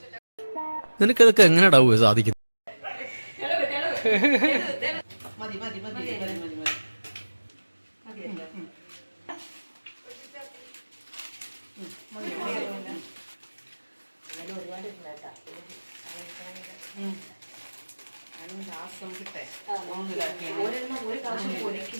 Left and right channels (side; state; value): both; inverted; correlation -1.00